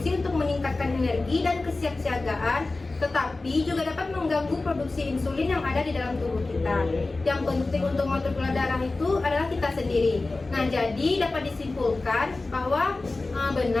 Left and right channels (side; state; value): right; quieter; 3.3 dB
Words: untuk meningkatkan energi dan kesiapsiagaan, tetapi juga dapat mengganggu produksi insulin yang ada di dalam tubuh kita. Yang penting untuk mengatur gula darah itu adalah kita sendiri. Nah, jadi dapat disimpulkan bahwa